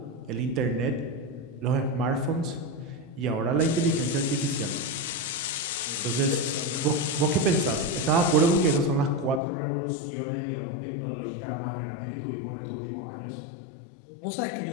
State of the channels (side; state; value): right; drops out; at 9.4 s